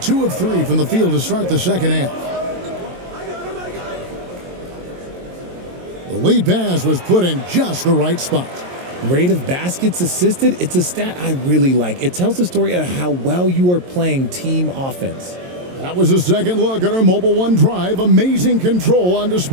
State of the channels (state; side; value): late; left; 22 ms